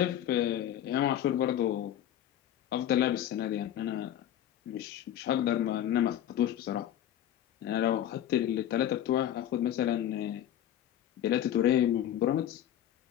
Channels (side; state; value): right; quieter; 11.3 dB